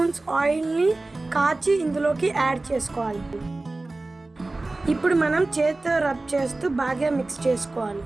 ఆయిల్ని కాచి ఇందులోకి యాడ్ చేసుకోవాలి. ఇప్పుడు మనం చేతితో రబ్ చేస్తూ బాగా మిక్స్ చేసుకోవాలి.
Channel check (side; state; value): left; quieter; 3.1 dB